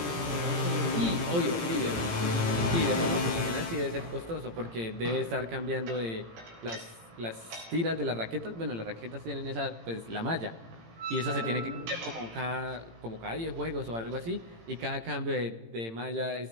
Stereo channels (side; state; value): left; late; 17 ms